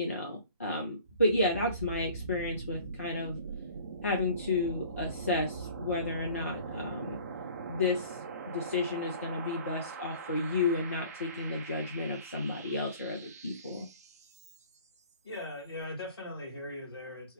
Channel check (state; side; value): inverted; both; correlation -0.49